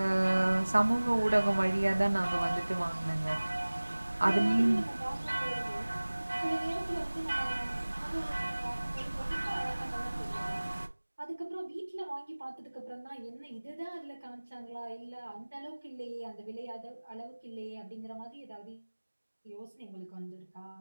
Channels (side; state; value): both; inverted; correlation -1.00